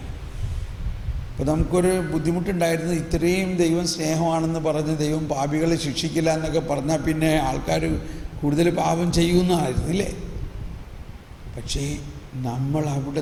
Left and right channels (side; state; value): both; identical; correlation 1.00